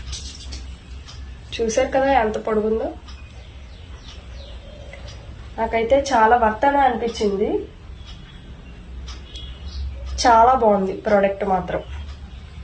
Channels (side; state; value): both; identical; correlation 1.00